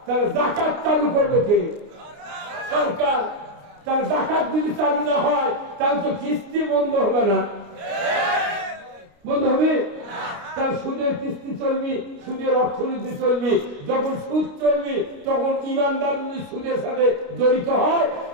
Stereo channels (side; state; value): left; late; 29 ms